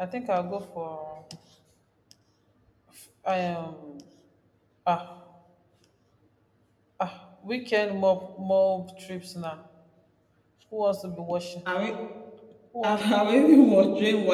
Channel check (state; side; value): identical; both; correlation 1.00